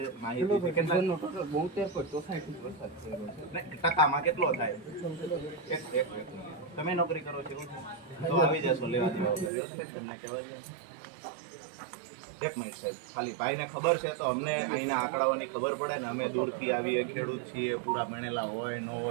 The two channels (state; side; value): drops out; left; at 9.5 s